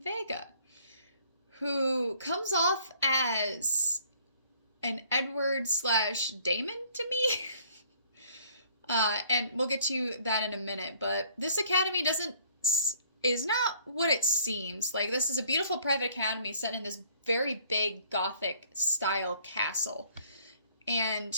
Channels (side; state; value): both; inverted; correlation -0.60